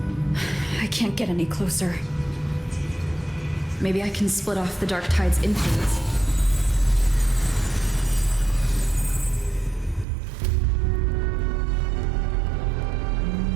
I can't get any closer. Maybe I can split off the Dark Tide's influence.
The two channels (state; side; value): drops out; left; at 10.1 s